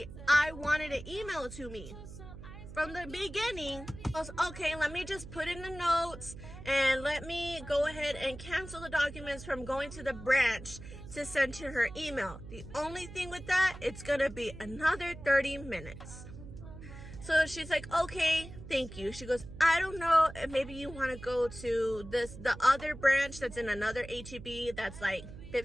I wanted to email to me from the beginning? I was, okay, let me just put in the notes and let me go ahead and cancel the documents from going to the branch to send to her email. The only thing with that, it's gonna be another 30 minutes. So she's like, okay, thank you. She goes, I don't know, maybe you want to go to the other branch that's in another HEB that's like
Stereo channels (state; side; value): noise; right; hum, 13 dB below the sound